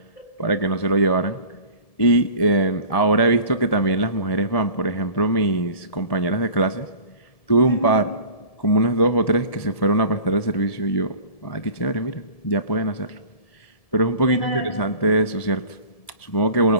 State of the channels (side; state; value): right; late; 1.7 ms